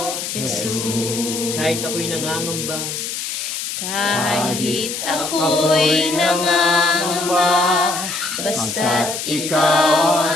Jesus. Kahit ako'y nangangamba, Kahit ako'y nangangamba, basta't ikaw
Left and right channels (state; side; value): noise; left; hiss, 5 dB below the sound